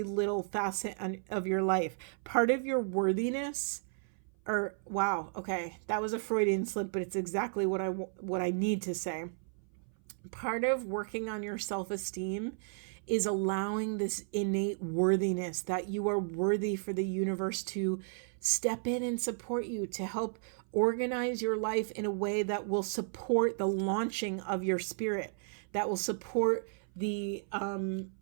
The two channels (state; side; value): silent; left; 55 dB below the other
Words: little facet of your life. Part of your worthiness, wow, okay, that was a Freudian slip, but it's exactly what I need to say. Part of working on your self-esteem is allowing this innate worthiness, that you are worthy for the universe to step in and support you, to help organize your life in a way that will support the launching of your spirit, that will support the